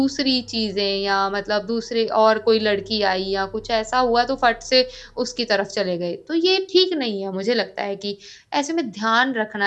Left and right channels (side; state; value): both; identical; correlation 1.00